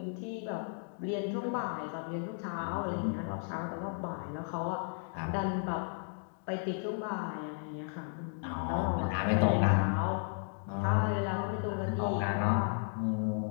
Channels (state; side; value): silent; right; 55 dB below the other